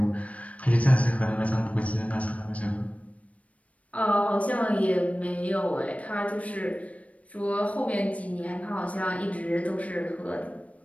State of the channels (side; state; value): right; late; 0.066 ms